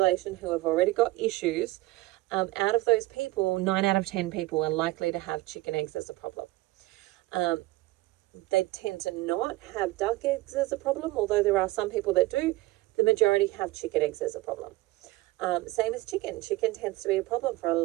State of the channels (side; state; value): left; quieter; 19.5 dB